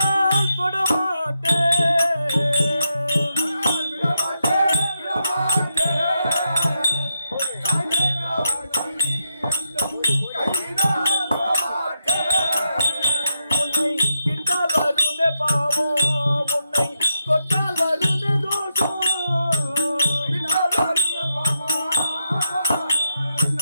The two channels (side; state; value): both; inverted; correlation -0.83